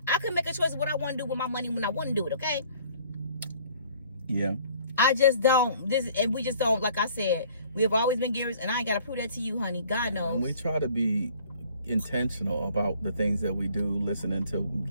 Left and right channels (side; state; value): both; inverted; correlation -0.56